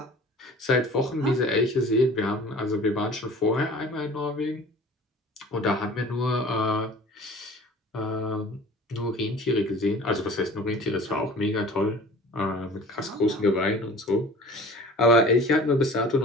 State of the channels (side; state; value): both; normal; correlation 0.44